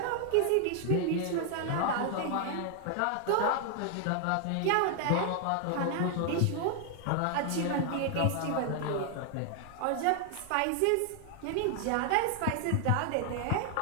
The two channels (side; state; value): both; different; correlation 0.00